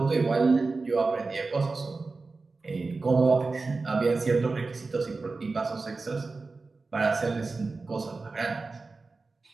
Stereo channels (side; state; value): left; quieter; 3.9 dB